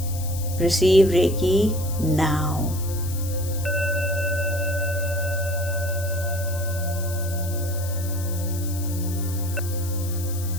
Receive Reiki now.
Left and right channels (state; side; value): noise; left; hiss, 12 dB below the sound